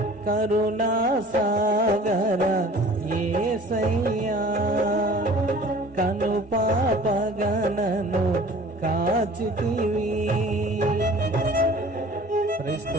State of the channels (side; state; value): both; normal; correlation 0.47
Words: కరుణా సాగర యేసయ్యా, కను పాపగనను కాచితివి.